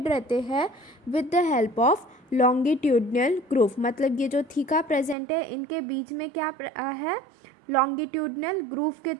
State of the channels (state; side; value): drops out; left; at 5.2 s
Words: रहते हैं with the help of longitudinal groove. मतलब ये जो थीका प्रेजेंट है इनके बीच में क्या है? लॉन्गिट्यूडनल ग्रूव के